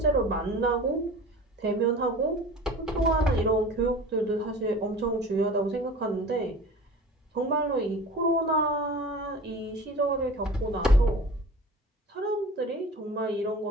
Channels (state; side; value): normal; both; correlation 0.39